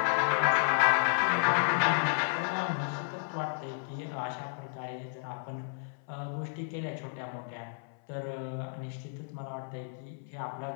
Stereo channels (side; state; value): right; silent; 56 dB below the other